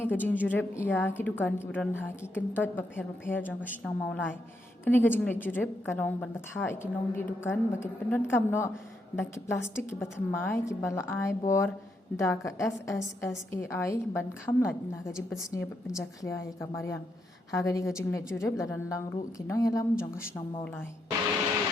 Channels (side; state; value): both; normal; correlation 0.80